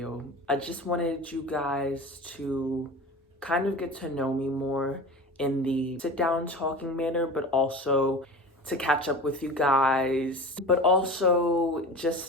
I just wanted you guys to kind of get to know me more in the sit down talking manner, but also to catch up with you guys, but also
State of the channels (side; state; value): both; normal; correlation 0.34